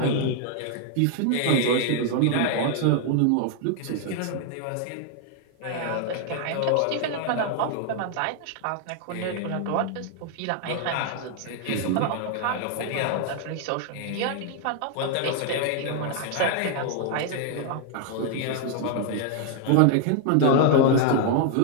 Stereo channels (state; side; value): different; both; correlation 0.00